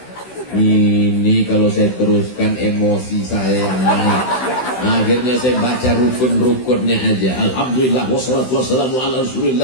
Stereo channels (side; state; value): right; late; 16 ms